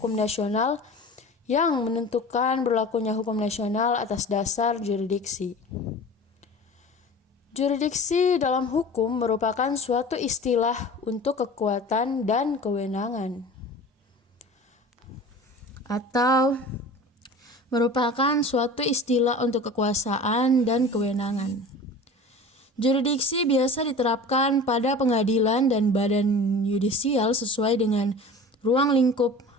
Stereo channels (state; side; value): normal; both; correlation 0.38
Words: nasional yang menentukan berlakunya hukum nasional atas dasar jurisdiksi. Jurisdiksi dalam hukum merupakan suatu istilah untuk kekuatan dan kewenangan, atau merupakan suatu istilah untuk kekuasaan dan kewenangan. Jurisdiksi biasa diterapkan pada pengadilan dan badan yudisial sesuai dengan ruang lingkup